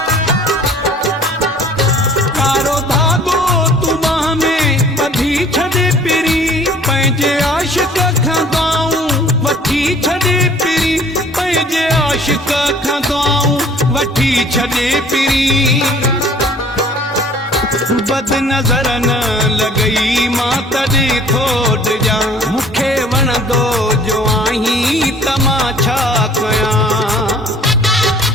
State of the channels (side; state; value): both; normal; correlation 0.52